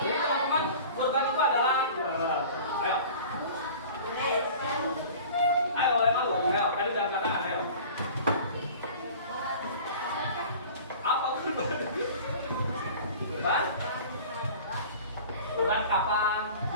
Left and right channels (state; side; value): inverted; both; correlation -0.42